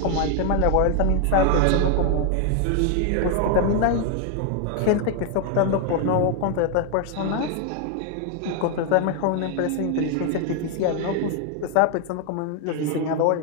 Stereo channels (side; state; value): both; different; correlation 0.00